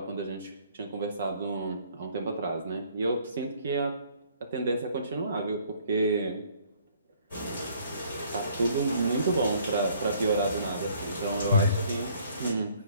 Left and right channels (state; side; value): inverted; both; correlation -0.60